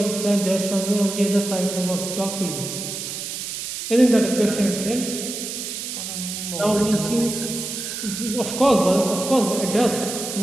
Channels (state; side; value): noise; right; hiss, 6 dB below the sound